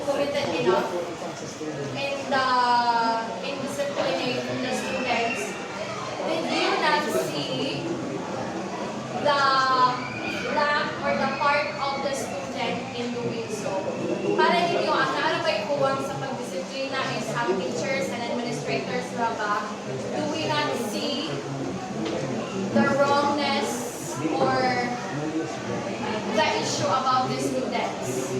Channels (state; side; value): identical; both; correlation 1.00